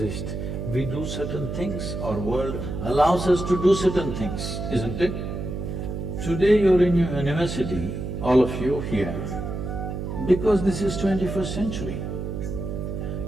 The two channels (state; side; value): noise; right; hum, 5 dB below the sound